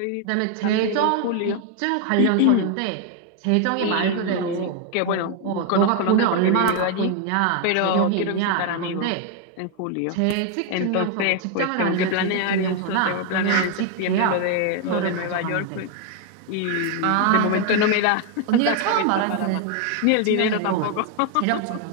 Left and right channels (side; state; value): both; different; correlation 0.01